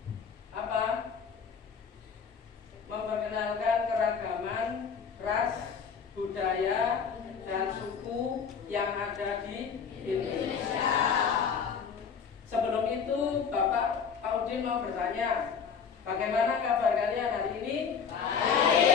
apa? Memperkenalkan keragaman ras, budaya, dan suku yang ada di Indonesia. Sebelum itu, Bapak Udin mau bertanya, bagaimana kabar kalian hari ini?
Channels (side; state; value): right; quieter; 6.5 dB